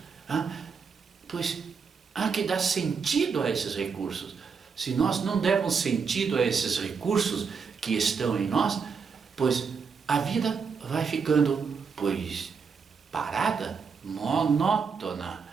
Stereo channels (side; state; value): left; quieter; 5.7 dB